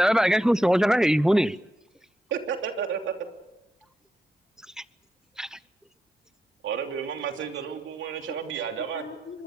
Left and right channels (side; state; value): both; normal; correlation 0.85